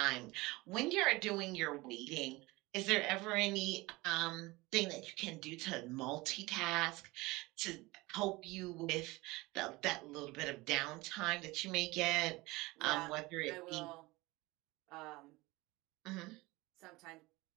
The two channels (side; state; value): left; quieter; 21.8 dB